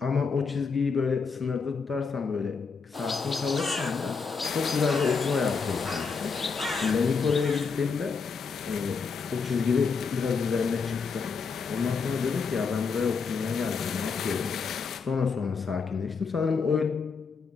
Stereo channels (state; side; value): quieter; right; 5.2 dB